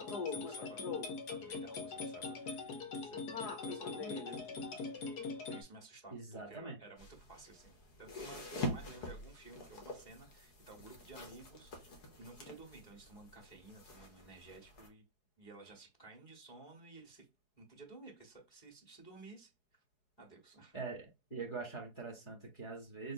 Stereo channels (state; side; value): late; right; 4.7 ms